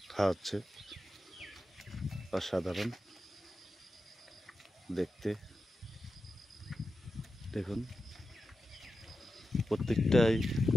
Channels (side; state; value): both; normal; correlation 0.91